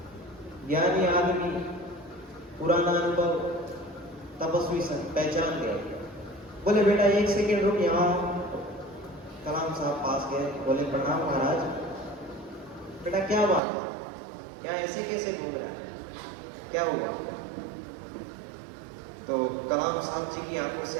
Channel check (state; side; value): drops out; left; at 13.6 s